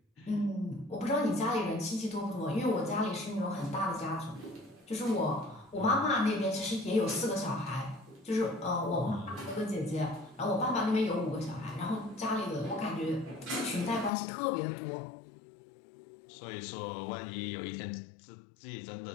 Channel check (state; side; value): drops out; right; at 14.1 s